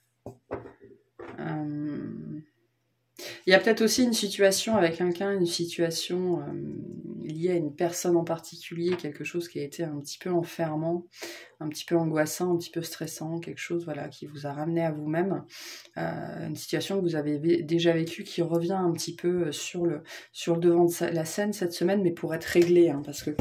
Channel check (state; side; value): identical; both; correlation 1.00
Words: Il y a peut-être aussi une situation avec quelqu'un, une situation liée à une personne en particulier, quelque chose qui a été un petit peu enfermant, un petit peu angoissant, un petit peu stressant, quelque chose voilà, qui vous a ramené à vous-même, une situation que vous avez déjà vécue qui revient un petit peu sur le devant de la scène cette semaine, mais pour être réglé, hein, parce que